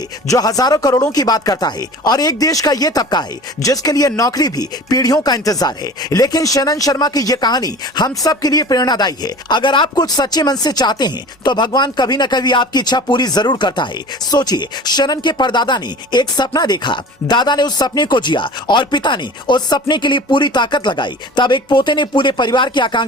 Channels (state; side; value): normal; both; correlation 0.40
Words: जो हजारों करोड़ों की बात करता है और एक देश का ये तबका है जिसके लिए नौकरी भी पीढ़ियों का इंतजार है। लेकिन शनन शर्मा की ये कहानी हम सब के लिए प्रेरणादायी है। अगर आप कुछ सच्चे मन से चाहते हैं तो भगवान कभी न कभी आपकी इच्छा पूरी जरूर करता है। सोचिए, शनन के परदादा ने एक सपना देखा, दादा ने उस सपने को जिया और पिता ने उस सपने के लिए पूरी ताकत लगाई। तब एक पोते ने पूरे परिवार की